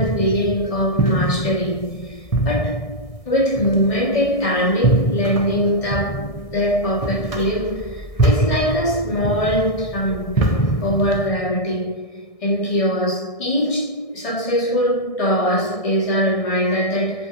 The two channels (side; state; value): right; late; 1.6 ms